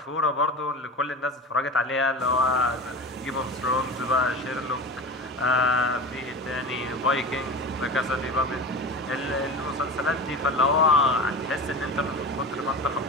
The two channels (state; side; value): normal; both; correlation 0.30